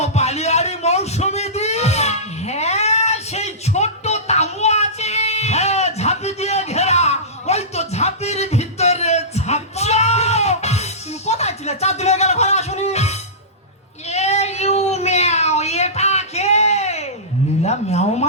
বালিয়াড়ি মৌসুমী দ্বীপ। হ্যাঁ সেই ছোট্ট তামু আছে। হ্যাঁ, ঝাঁপি দিয়ে ঘেরা, ওই তো ঝাঁপির ভিতরে ঝাঁপছো। তুমি কোথায় ছিলে? চার দিন হয়ে গেল ঘরে আসুনি। এ ইউ ম্যাও, এটা কে? নীলা ম্যাও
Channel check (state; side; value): normal; both; correlation -0.20